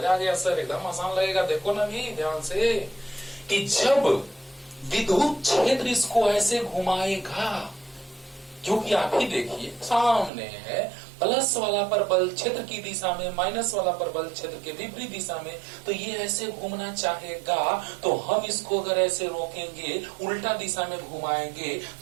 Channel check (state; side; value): drops out; left; at 10.3 s